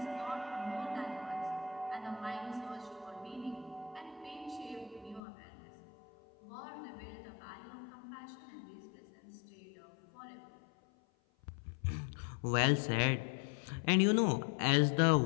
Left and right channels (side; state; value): right; drops out; at 5.2 s